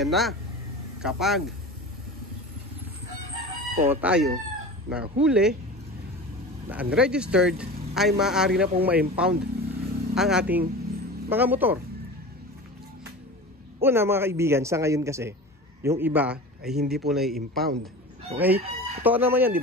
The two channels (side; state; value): both; normal; correlation 0.33